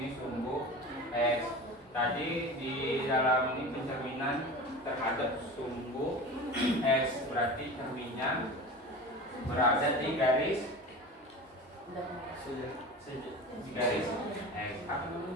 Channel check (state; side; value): normal; both; correlation 0.33